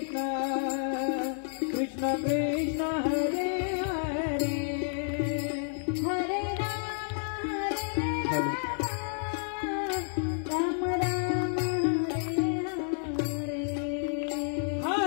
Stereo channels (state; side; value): silent; right; digital silence